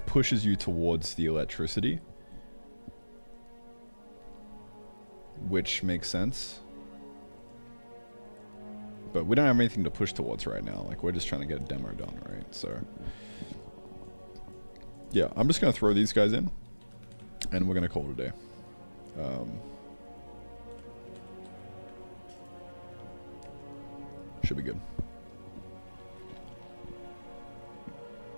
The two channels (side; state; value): both; inverted; correlation -1.00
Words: pushes you towards the electricity, which makes sense. But we don't have anything to push towards right now. Like, we're just trying to get a demo done, right? So, yeah, I'm just going to throw these guys in, and we're going to call it a day. Should be good.